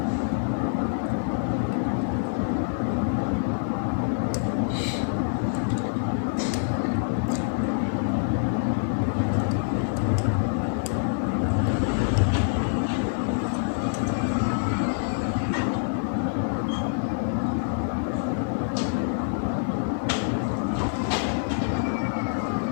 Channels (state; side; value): silent; right; digital silence